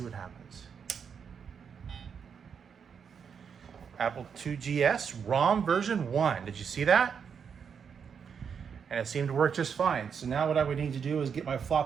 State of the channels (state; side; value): quieter; left; 6.8 dB